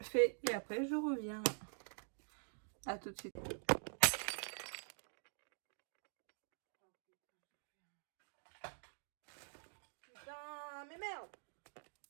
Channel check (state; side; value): silent; left; digital silence